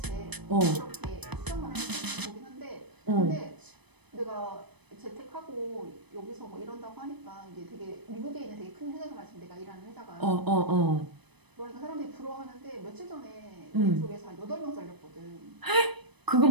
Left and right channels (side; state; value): left; late; 0.99 ms